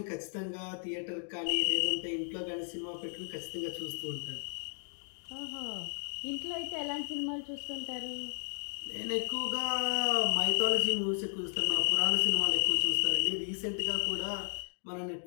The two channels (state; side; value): silent; right; 55 dB below the other